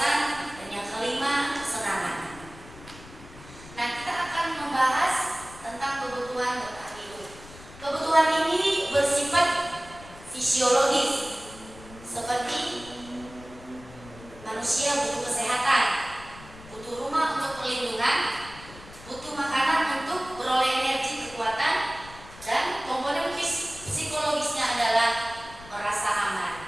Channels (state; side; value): noise; left; rumble, 18 dB below the sound